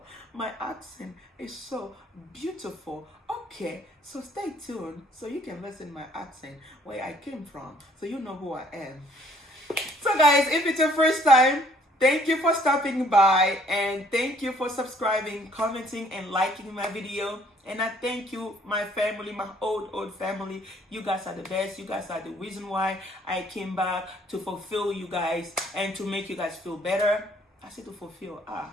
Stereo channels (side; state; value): both; normal; correlation 0.61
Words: My accent is so beautiful. Okay, so stay tuned so you can listen my accent, where I came from, so you know who I am. So guys, if it's your first time, thank you for stopping by, and thank you for subscribing, commenting, and liking my video. And I thank you, my family, my old family. You guys are the best. You guys are the reason why I came back, to fulfill you guys and to make you guys feel better. I said to fulfill.